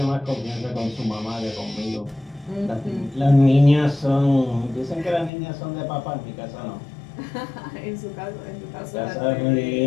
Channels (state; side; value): drops out; right; at 5.3 s